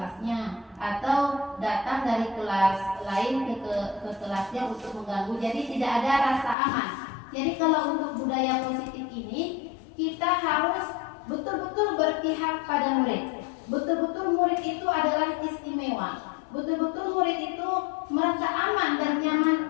atau datang dari kelas lain ke kelasnya untuk mengganggu. Jadi tidak ada rasa aman. Jadi kalau untuk budaya positif ini, kita harus betul-betul berpihak pada murid. Betul-betul murid itu adalah istimewa. Betul-betul murid itu merasa aman dan nyaman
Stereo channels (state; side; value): drops out; right; at 6.6 s